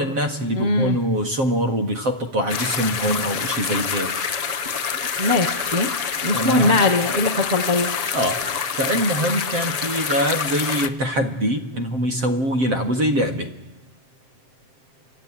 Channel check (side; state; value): left; late; 7.6 ms